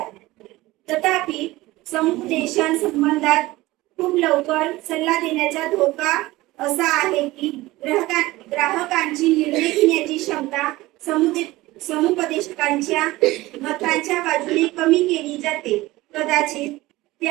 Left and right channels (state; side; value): quieter; left; 18.9 dB